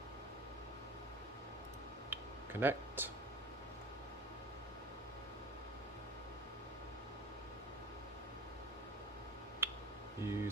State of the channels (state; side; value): normal; both; correlation 0.38